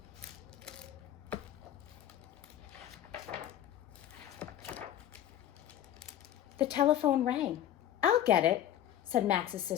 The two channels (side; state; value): right; quieter; 11.4 dB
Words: The telephone rang. "I'll get it," said Max's